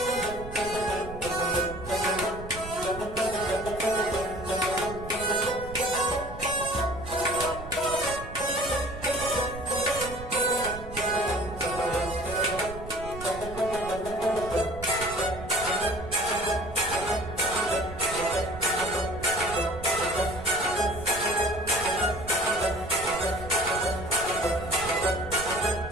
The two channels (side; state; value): right; noise; rumble, 12 dB below the sound